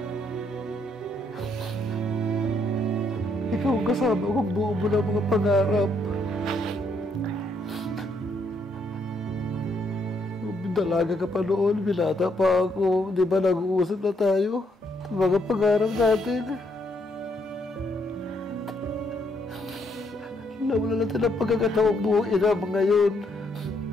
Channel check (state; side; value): normal; both; correlation 0.73